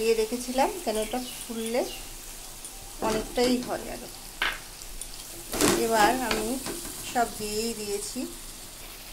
রেখেছিলাম, কেন ওটা ফুললে অনেকটাই হয় আরো। এবার আমি সব দিয়েই দিয়েছি।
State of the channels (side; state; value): both; identical; correlation 1.00